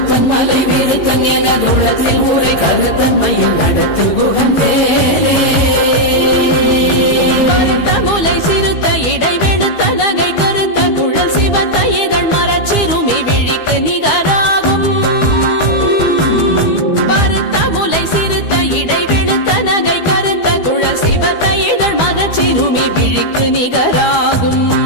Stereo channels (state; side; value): late; right; 12 ms